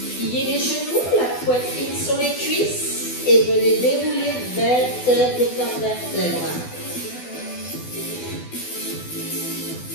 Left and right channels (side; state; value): right; late; 12 ms